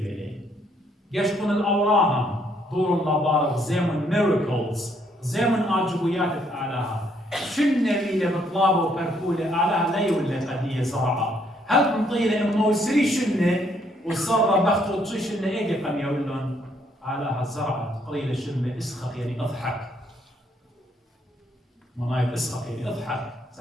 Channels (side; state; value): both; normal; correlation 0.69